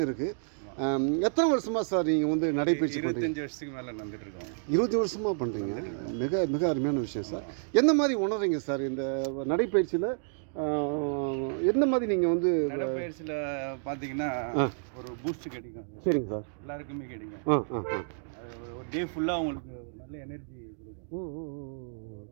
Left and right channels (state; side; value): silent; left; digital silence